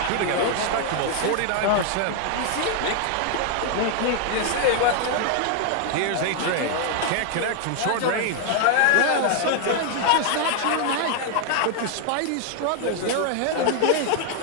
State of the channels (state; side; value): different; both; correlation 0.00